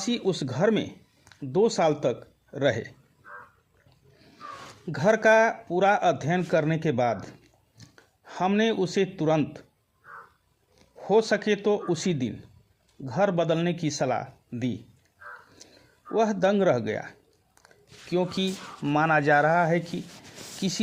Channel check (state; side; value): identical; both; correlation 1.00